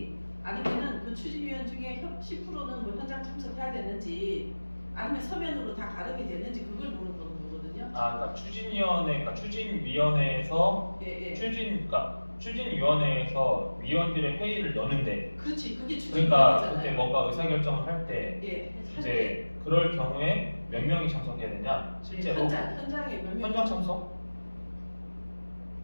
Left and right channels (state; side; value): inverted; both; correlation -1.00